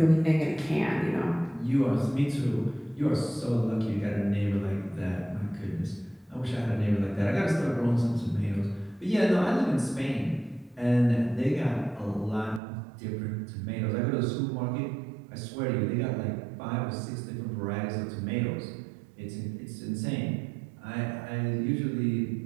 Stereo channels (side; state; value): left; drops out; at 12.6 s